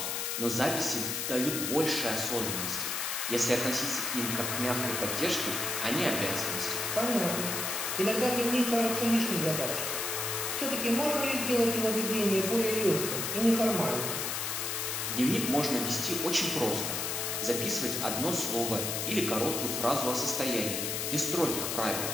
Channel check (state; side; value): noise; left; hiss, 1 dB below the sound